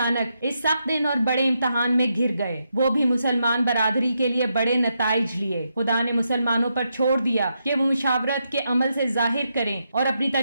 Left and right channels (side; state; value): both; inverted; correlation -0.83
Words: इस सख्त दिन और बड़े इम्तहान में घिर गए। वो भी मुसलमान बरादरी के लिए बड़े नताइज लिए। खुदा ने मुसलमानों पर छोड़ दिया कि वो मुशावरत के अमल से जाहिर करें और अपनी